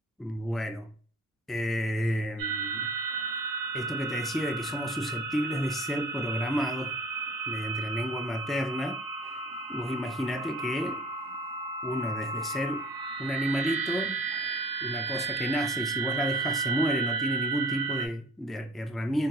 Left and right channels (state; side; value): normal; both; correlation 0.48